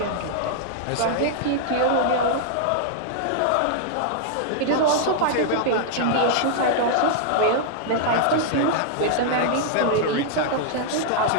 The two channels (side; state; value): both; different; correlation -0.01